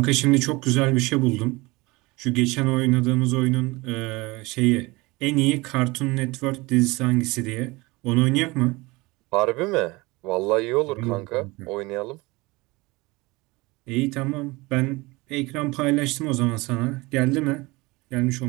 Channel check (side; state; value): left; quieter; 23.1 dB